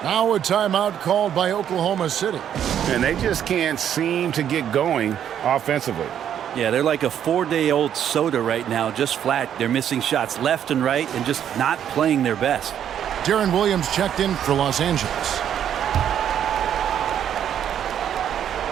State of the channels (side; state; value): left; quieter; 9.6 dB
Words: Now a timeout called by Oklahoma City. And they just can't seem to get going offensively. Yeah, they're like a 4-day-old soda right now, just flat. They're missing shots left and right and just not playing their best. Deron Williams checked in for Los Angeles.